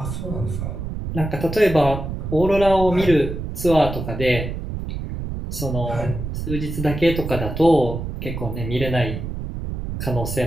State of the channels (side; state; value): right; noise; rumble, 6 dB below the sound